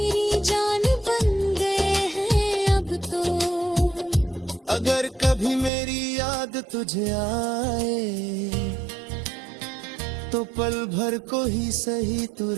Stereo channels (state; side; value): drops out; left; at 5.7 s